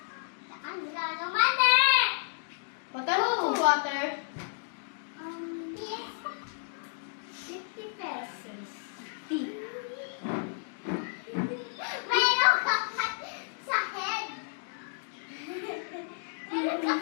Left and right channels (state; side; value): silent; right; digital silence